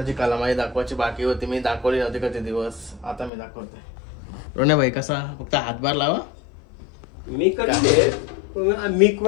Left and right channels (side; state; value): right; drops out; at 3.3 s